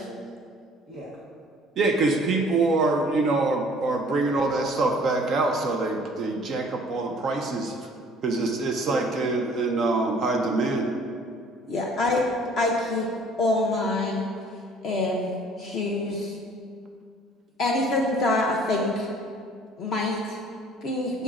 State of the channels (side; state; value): both; normal; correlation 0.54